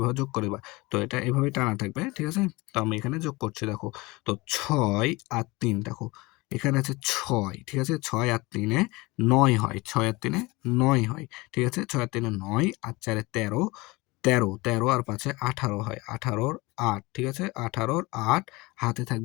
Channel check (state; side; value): quieter; right; 23.2 dB